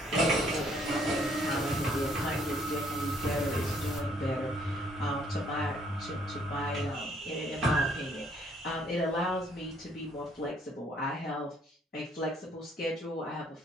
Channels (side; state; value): both; normal; correlation 0.65